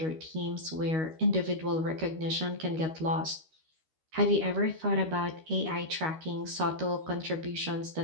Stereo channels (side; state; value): left; late; 13 ms